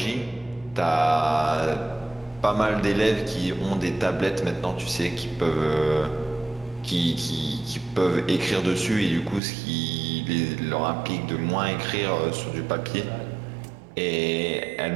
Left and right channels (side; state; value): left; drops out; at 9.4 s